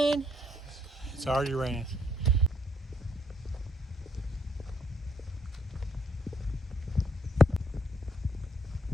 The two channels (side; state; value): both; normal; correlation 0.70